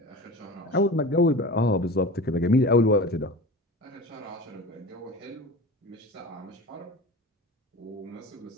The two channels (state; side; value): normal; both; correlation 0.34